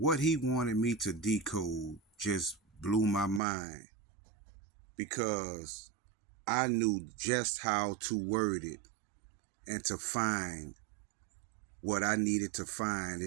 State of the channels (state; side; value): drops out; left; at 3.4 s